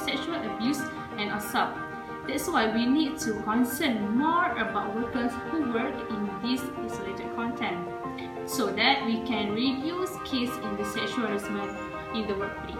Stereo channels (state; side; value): identical; both; correlation 1.00